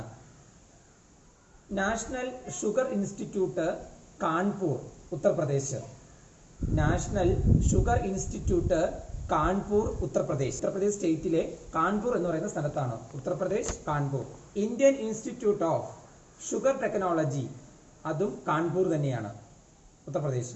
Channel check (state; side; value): identical; both; correlation 1.00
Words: National sugar institute Kanpur, Uttar Pradesh. National sugar institute Kanpur, Uttar Pradesh. Uttar Pradesh സ്റ്റേറ്റിലെ കാൺപൂർ എന്ന് പറയുന്ന സ്ഥലത്താണ്. Uttar Pradesh, Kanpur. Indian institute of sugar technology, അതും കാൺപൂർ തന്നെയാണ്,